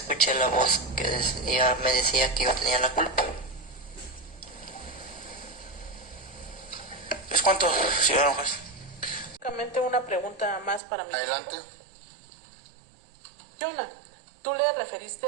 la voz que me decía que yo tenía la culpa. ¿Es cuánto, señor juez? Únicamente una pregunta más para mí. Adelante. Jonah, tú le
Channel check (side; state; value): left; drops out; at 10.8 s